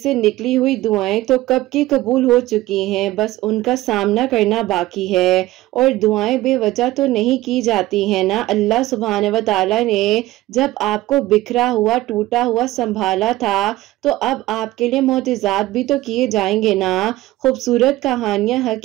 निकली हुई दुआएं तो कब की कबूल हो चुकी हैं, बस उनका सामना करना बाकी है। और दुआएं बेवजह तो नहीं की जाती हैं ना। अल्लाह सुब्हान व तआला ने जब आपको बिखरा हुआ टूटा हुआ संभाला था, तो अब आपके लिए मोजिज़ात भी तो किए जाएंगे ना। खूबसूरत कहानियां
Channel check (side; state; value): left; quieter; 17.0 dB